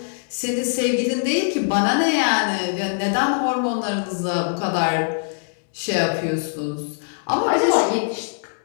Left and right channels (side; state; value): right; silent; digital silence